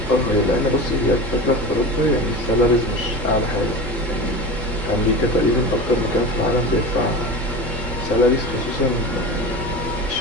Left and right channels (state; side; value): normal; both; correlation 0.29